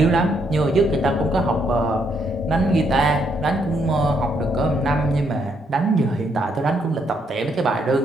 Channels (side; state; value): both; normal; correlation 0.74